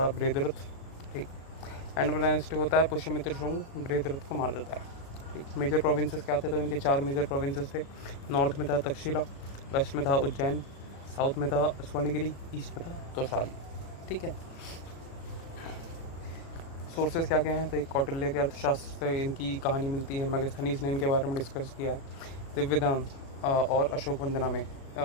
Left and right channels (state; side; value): late; right; 36 ms